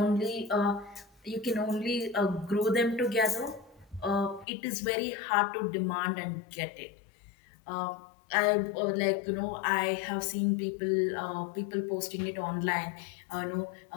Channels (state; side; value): drops out; right; at 4.5 s